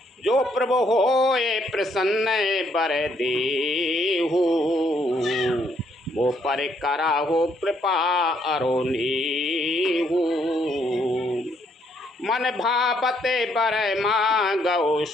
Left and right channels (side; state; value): both; normal; correlation 0.71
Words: जो प्रभु हो ये प्रसन्न बर देहु, वो पर करा हो कृपा अरोनीहु। मन भावते बर मांगो